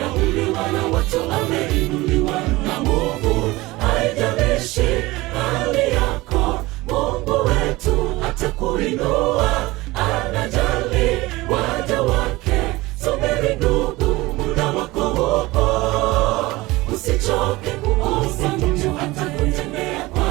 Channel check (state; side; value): quieter; left; 20.4 dB